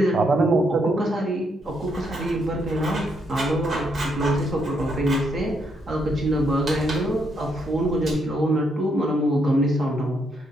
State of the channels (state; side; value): normal; both; correlation 0.75